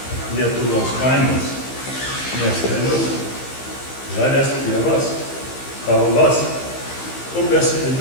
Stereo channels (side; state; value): right; late; 15 ms